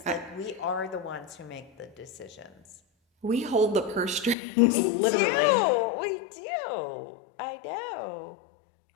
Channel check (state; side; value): drops out; right; at 4.4 s